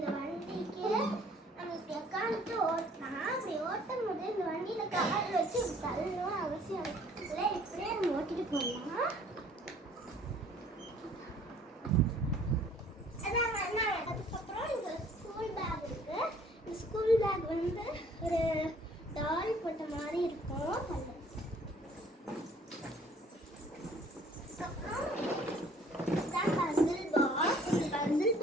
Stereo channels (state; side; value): normal; both; correlation 0.57